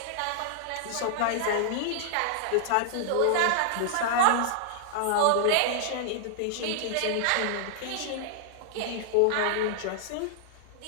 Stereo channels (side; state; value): both; different; correlation -0.01